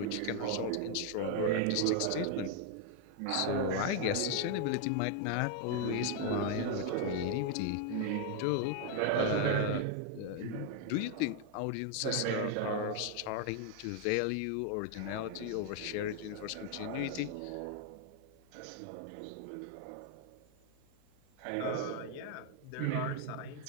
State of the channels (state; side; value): different; both; correlation 0.00